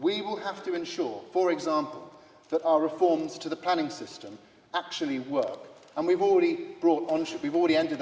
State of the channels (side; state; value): both; identical; correlation 1.00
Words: will have to ensure, for example, that our reforms to the planning system actually work. And we've already ended